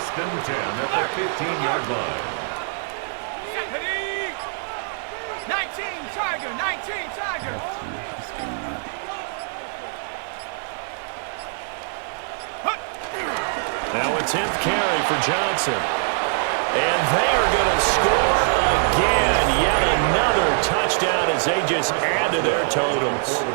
and 10 at the 15-yard line. 19 Tiger, 19 Tiger. Now a 10th carry for Johnson. And they are going to score again. Yet another touchdown as they just add to their totals.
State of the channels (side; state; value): left; silent; 60 dB below the other